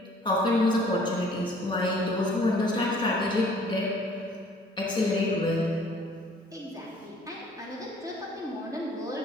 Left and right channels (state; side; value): normal; both; correlation 0.56